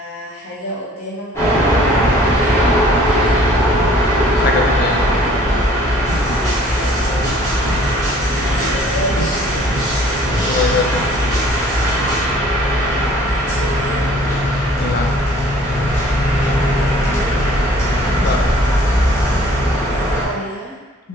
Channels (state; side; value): normal; both; correlation 0.54